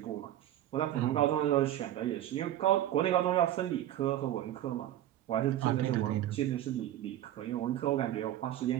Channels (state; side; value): quieter; left; 12.7 dB